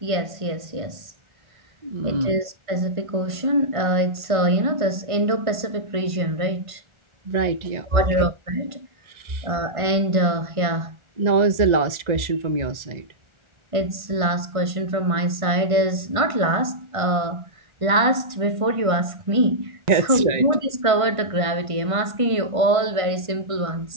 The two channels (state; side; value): late; left; 1.5 ms